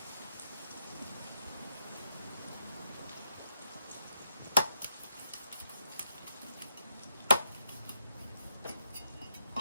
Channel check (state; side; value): inverted; both; correlation -0.79